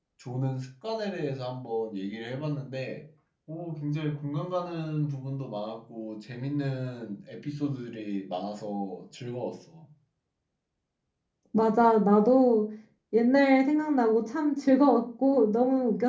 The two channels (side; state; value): both; identical; correlation 1.00